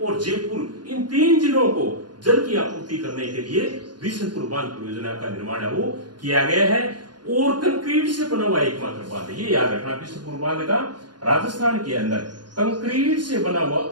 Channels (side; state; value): left; late; 0.70 ms